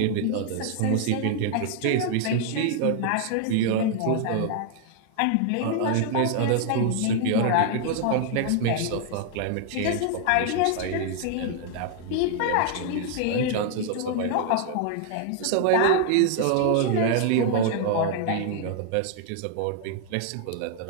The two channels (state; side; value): different; both; correlation 0.00